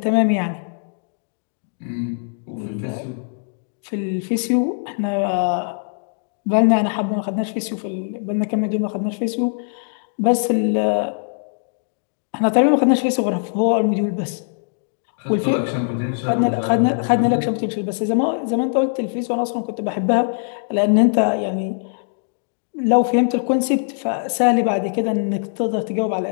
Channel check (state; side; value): silent; right; digital silence